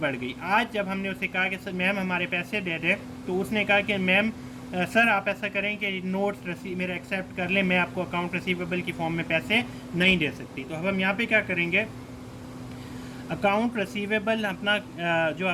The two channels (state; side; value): identical; both; correlation 1.00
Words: गई। आज जब हमने उसे कहा कि मैम हमारे पैसे दे दें, तो उसने कहा कि मैम सर आप ऐसा करें कि नोट्स मेरा एक्सेप्ट कर लें, मैं आपको अकाउंट रिसीवेबल की फॉर्म में पैसे नहीं दे सकती। तो अब हम यहाँ पे क्या करेंगे? अकाउंट रिसीवेबल अपना जो